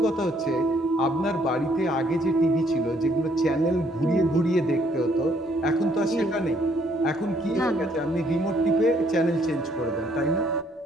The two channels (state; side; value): normal; both; correlation 0.67